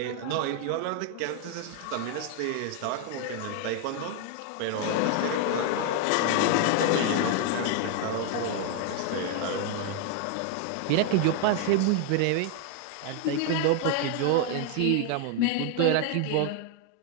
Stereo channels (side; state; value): both; different; correlation 0.00